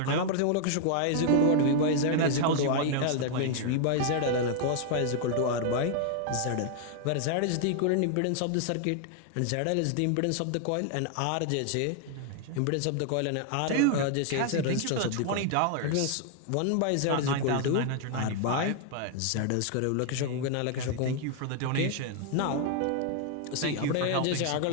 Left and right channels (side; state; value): both; different; correlation 0.00